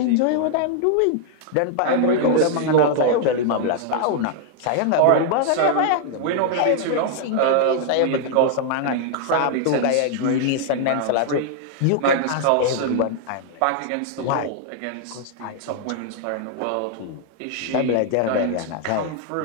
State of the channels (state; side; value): different; both; correlation -0.01